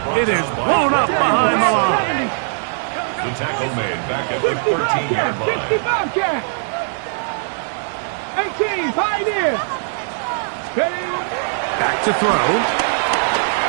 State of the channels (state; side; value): silent; left; digital silence